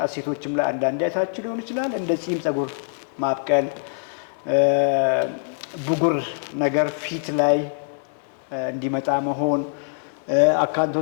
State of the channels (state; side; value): silent; right; digital silence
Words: ሴቶችም ላይ አንዳንድ አይታችሁ ሊሆን ይችላል። እንደ ጺም ጸጉር ማብቀል፣ ብጉር ነገር ፊት ላይ እንዲመጣ መሆን፣